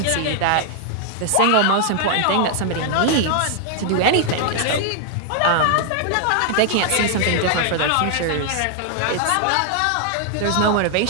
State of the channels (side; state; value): both; different; correlation 0.00